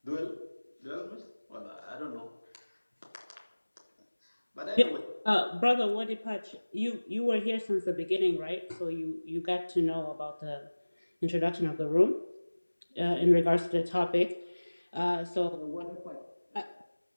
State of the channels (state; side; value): inverted; both; correlation -1.00